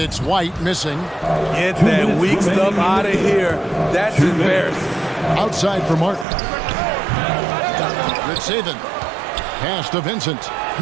White missing. Get that weak stuff out of here. That's embarrassing. Outside for Martin. Good saving. Pass to Vincent.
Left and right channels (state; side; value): drops out; left; at 6.2 s